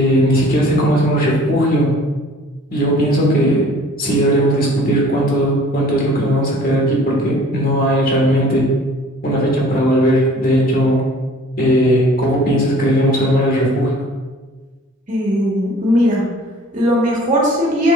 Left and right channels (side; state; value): both; normal; correlation 0.50